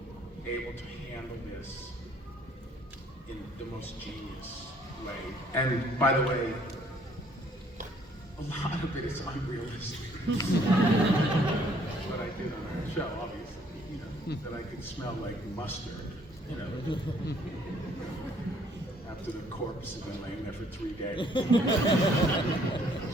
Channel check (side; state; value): both; normal; correlation 0.62